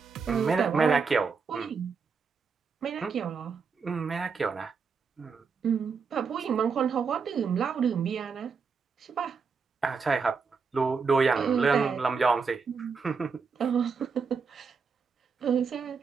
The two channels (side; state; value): left; quieter; 5.4 dB